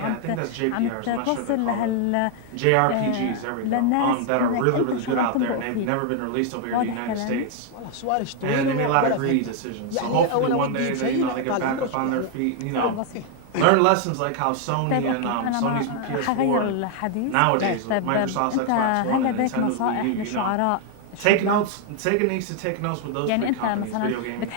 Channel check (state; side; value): different; both; correlation 0.00